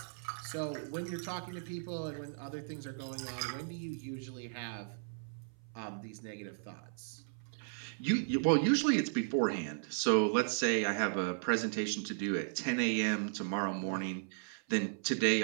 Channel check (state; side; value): silent; left; 54 dB below the other